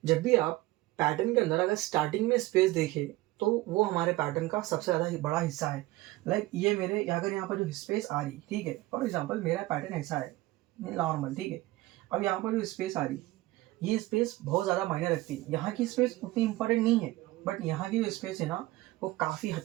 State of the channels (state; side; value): quieter; left; 18.4 dB